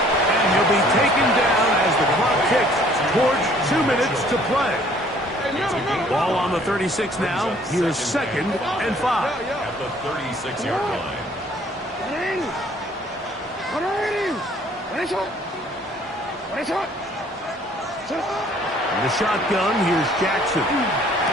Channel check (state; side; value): normal; both; correlation 0.58